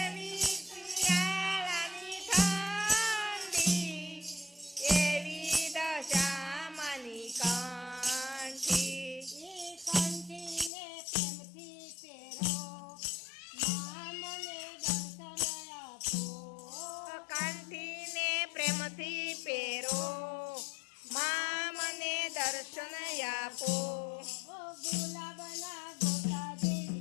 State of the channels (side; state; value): right; drops out; at 10.7 s